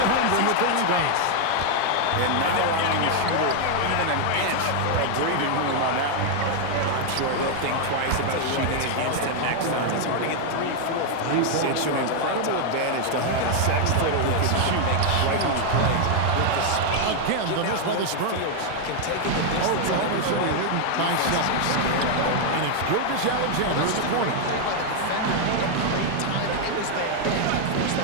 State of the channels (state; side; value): different; both; correlation 0.00